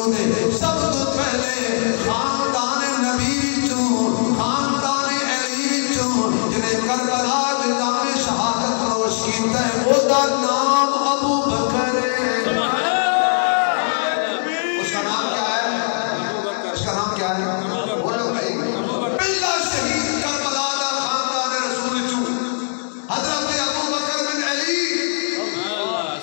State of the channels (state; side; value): silent; right; 62 dB below the other